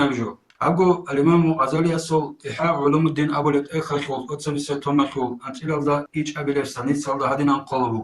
بجو أبو الإمام غزالي أصل إحياء علوم الدين أبو الإخر شغل أتصل ستوما شغل أنت إلى ذا إيش أبي لفسانيت صلى هدينا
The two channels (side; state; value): both; identical; correlation 1.00